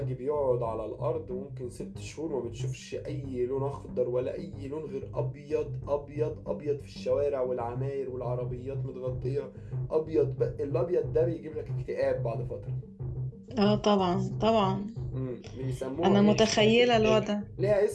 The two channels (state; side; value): identical; both; correlation 1.00